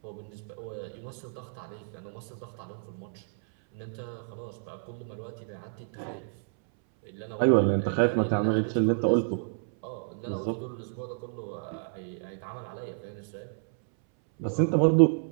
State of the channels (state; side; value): silent; left; 58 dB below the other